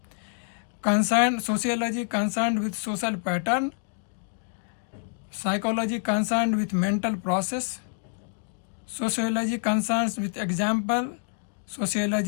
Sociology concerned with social pattern. Psychology concerned with mental process. Sociology concerns with example.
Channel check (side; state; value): right; silent; digital silence